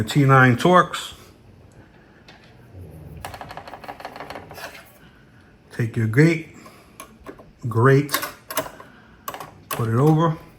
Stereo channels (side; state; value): both; identical; correlation 1.00